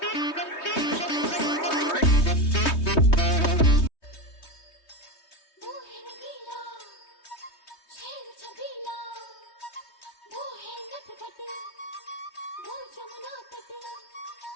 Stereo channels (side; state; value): right; late; 3.2 ms